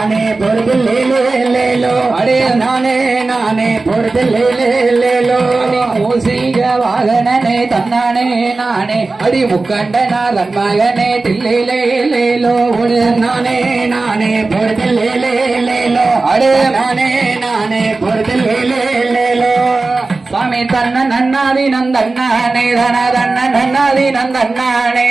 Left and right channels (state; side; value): quieter; left; 3.6 dB